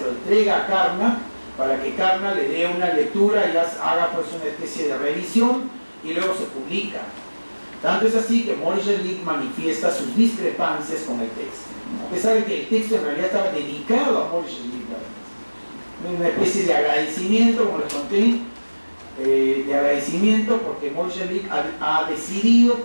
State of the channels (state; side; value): inverted; both; correlation -1.00